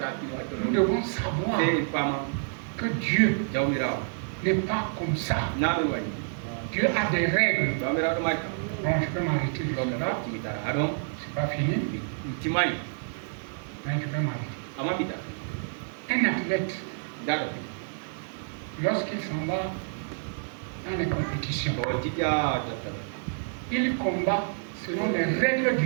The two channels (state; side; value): silent; left; digital silence